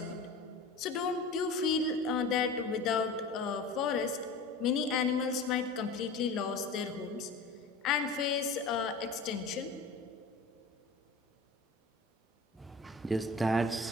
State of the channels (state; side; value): quieter; right; 3.7 dB